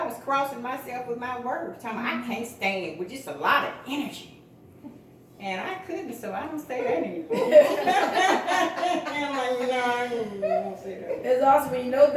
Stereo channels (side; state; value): both; identical; correlation 1.00